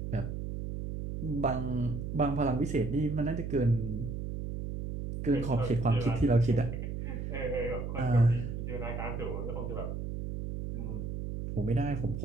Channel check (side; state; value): right; noise; hum, 5 dB below the sound